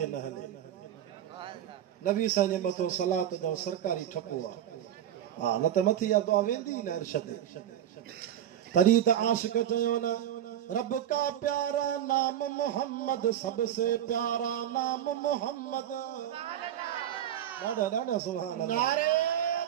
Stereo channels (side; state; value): left; quieter; 10.7 dB